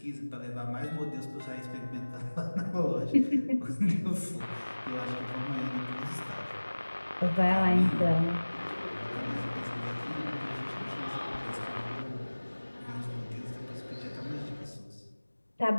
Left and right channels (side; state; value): both; inverted; correlation -1.00